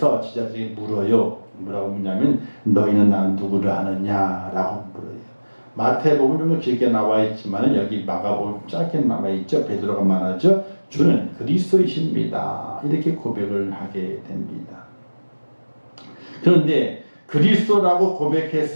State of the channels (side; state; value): both; inverted; correlation -1.00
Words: 제자들이 물어요. 뭐라고 묻냐면 너희는 나를 누구를 아느냐라고 물어요. 마태복음 좀 길게 나와 있지만 여기 마가복음 짧게 나와 있죠. 베드로가 말하죠. 주는 그리스도이십니다. 이렇게 고백을 하게 됩니다. 그런데 그리스도라고